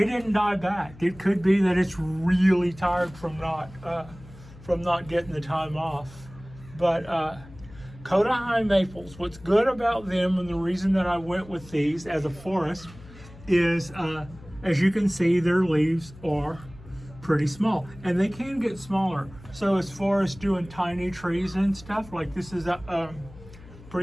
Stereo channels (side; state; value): left; noise; hum, 20 dB below the sound